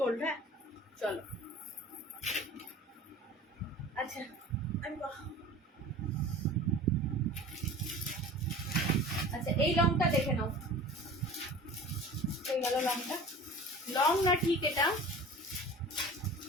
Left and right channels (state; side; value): normal; both; correlation 0.40